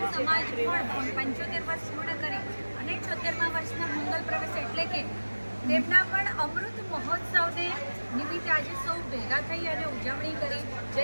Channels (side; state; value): both; inverted; correlation -1.00